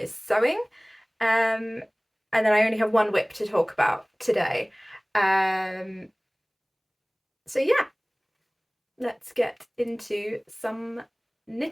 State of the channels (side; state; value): both; identical; correlation 1.00